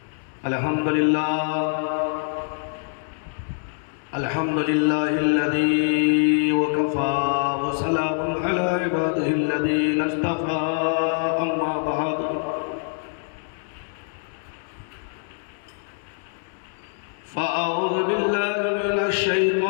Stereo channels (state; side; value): silent; right; digital silence